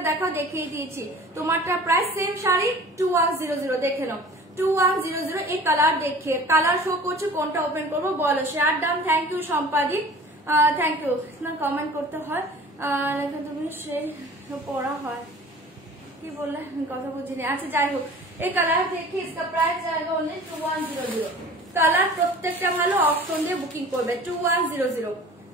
দেখাও, দেখিয়ে দিয়েছি। তোমারটা প্রাইস সেম শাড়ি 2100, দেখে নাও 2100। এই কালার দেখিয়ে, কালার শো করছে, কোনটা ওপেন করবো বলো? শেয়ার ডান, থ্যাংক ইউ সম্পাদি, থ্যাংক ইউ। না কমেন্ট করতে হয়, তুমি সেই পড়া হয়, কি বললে কথা বুঝিনি। আচ্ছা যাই হোক, এই কালার দেখি, इसका प्राइस जाएगा ओनली 2100। কালার প্রত্যেকটা ভালো, অপশন দিয়ে বুকিং করবে 2100।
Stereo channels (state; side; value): normal; both; correlation 0.44